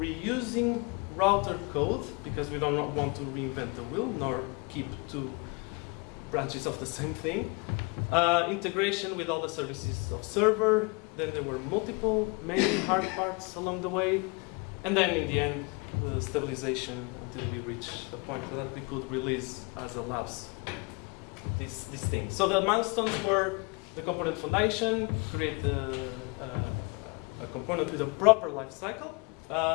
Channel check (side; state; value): right; quieter; 30.2 dB